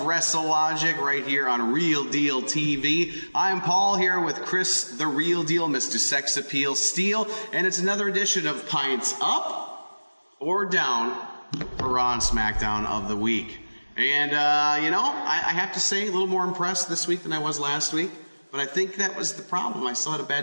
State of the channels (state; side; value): inverted; both; correlation -1.00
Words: WrestleLogic right here on Real Deal TV. I'm Paul here with Chris, the Real Deal, Mr. Sex Appeal Steele, and it's another edition of Pints Up or Down for Raw and SmackDown of the week. And, I have to say, a little more impressed this week than I was last week. But I think that was the problem. I still had a